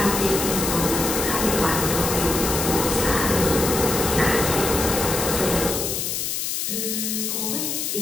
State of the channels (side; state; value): left; noise; hiss, 2 dB below the sound